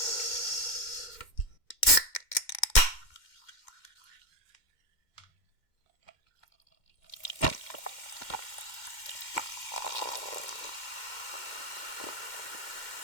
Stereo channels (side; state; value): right; late; 2.1 ms